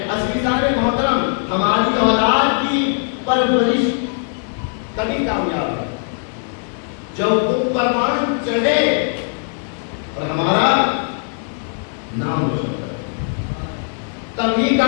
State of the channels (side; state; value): right; silent; 62 dB below the other